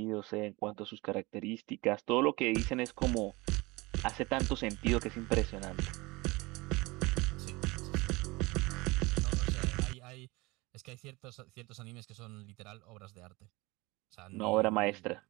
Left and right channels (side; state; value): left; quieter; 23.3 dB